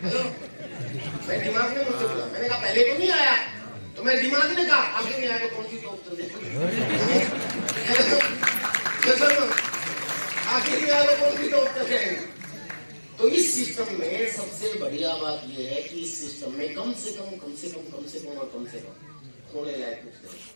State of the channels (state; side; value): inverted; both; correlation -1.00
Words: मेरे दिमाग ने मुझसे बोला, मैंने कहा पहले तो नहीं आया। तो मेरे दिमाग ने कहा आगे नहीं आया तो कौन सी टॉप चल आखिर नहीं आया तो कौन सी टॉप चल जाएगी। तो इस सिस्टम में सबसे बढ़िया बात यह है कि इस सिस्टम में कम से कम खोने लायक कुछ नहीं,